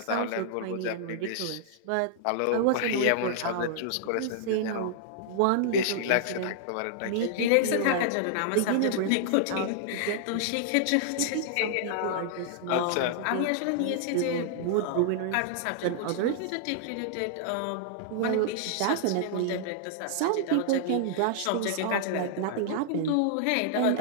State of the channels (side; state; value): both; different; correlation -0.01